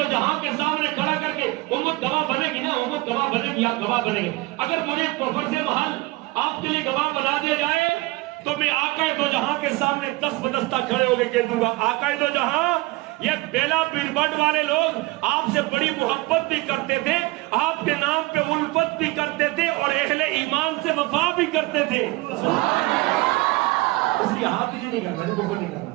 جہاں کے سامنے کھڑا کر کے امت گواہ بنے گی نا، امت گواہ بنے گی، آپ گواہ بنے گے۔ اگر مجھے فرض محل آپ کے لیے گواہ بنا دیا جائے تو میں آقا دو جہاں کے سامنے دست بدستہ کھڑے ہو کے کہہ دوں گا، آقا دو جہاں یہ بیلا پیربٹ والے لوگ آپ سے بڑی محبت بھی کرتے تھے، آپ کے نام پہ الفت بھی کرتے تھے، اور اہل ایمان سے وفا بھی کرتے تھے۔ اس لیے ہاتھ نہیں کرنا، کفر نہیں کرنا۔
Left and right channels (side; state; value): left; quieter; 21.6 dB